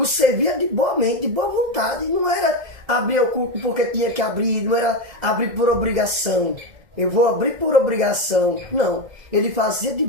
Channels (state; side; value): late; left; 2.0 ms